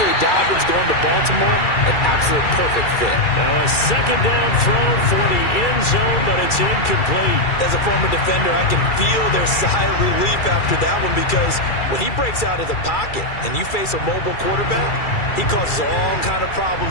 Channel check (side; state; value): right; late; 2.3 ms